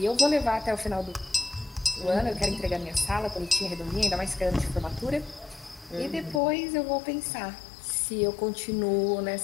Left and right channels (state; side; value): drops out; right; at 6.4 s